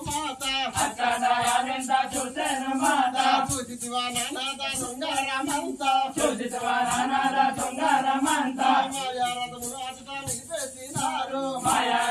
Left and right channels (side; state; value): both; identical; correlation 1.00